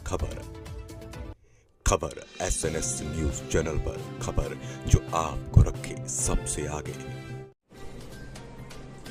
खबर SNS न्यूज चैनल पर, खबर जो आपको रखे सबसे आगे।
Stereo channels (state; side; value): identical; both; correlation 1.00